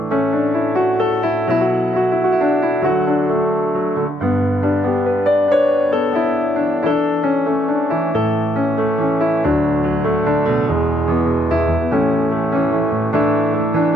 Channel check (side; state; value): both; normal; correlation 0.74